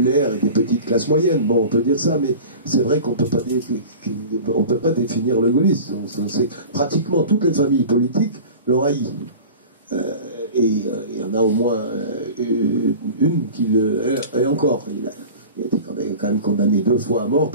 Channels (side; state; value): both; inverted; correlation -0.37